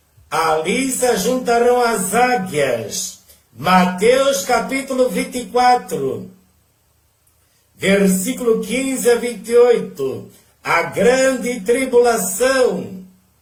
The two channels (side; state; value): both; identical; correlation 1.00